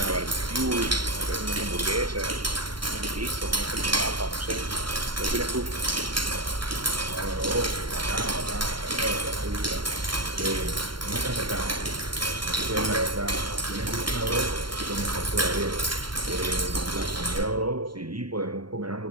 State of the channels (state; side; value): late; left; 0.72 ms